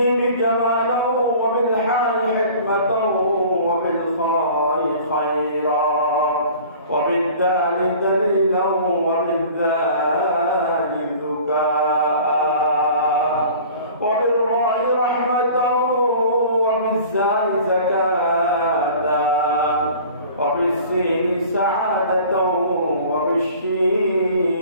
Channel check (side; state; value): both; inverted; correlation -0.45